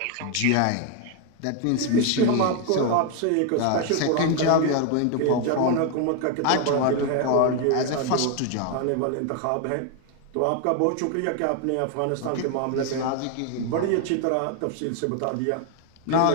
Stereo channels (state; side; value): different; both; correlation 0.01